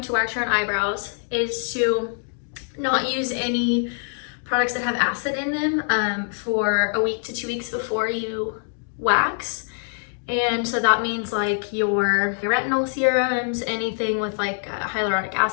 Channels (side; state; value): right; silent; 58 dB below the other